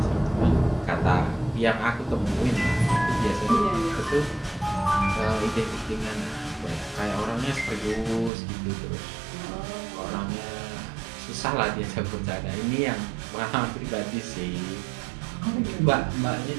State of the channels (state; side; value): drops out; left; at 8.3 s